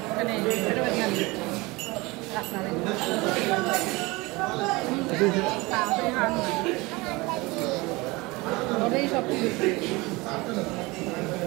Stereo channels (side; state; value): left; quieter; 23.4 dB